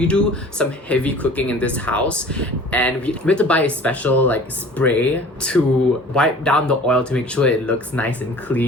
do some heavy cooking in this house, and we have to buy a special like spray to wipe down the oil to make sure it looks nice and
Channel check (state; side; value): normal; both; correlation 0.45